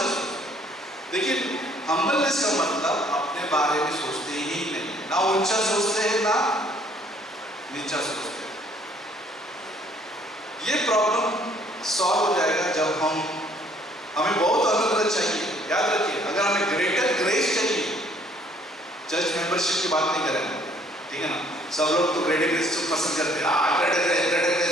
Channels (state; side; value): normal; both; correlation 0.61